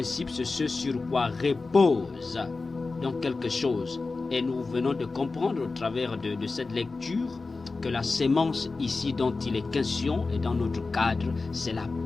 c'est ce sur quoi repose donc quelque chose. Et nous venons de comprendre au travers de cette lecture que la sémence ici dont il est question et dans notre cadre, c'est la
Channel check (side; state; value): right; quieter; 3.8 dB